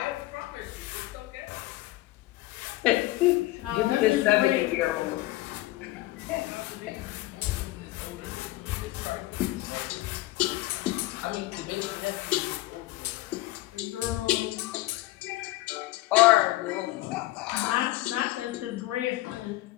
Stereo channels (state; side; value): quieter; right; 17.9 dB